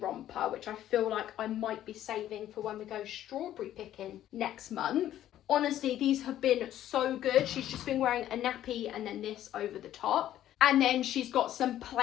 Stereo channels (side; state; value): right; quieter; 12.3 dB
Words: which I feel like I might be saving for when we go strawberry picking next month. Honestly, these have been so good. She's just been wearing a nappy and then this over the top. And then she's got some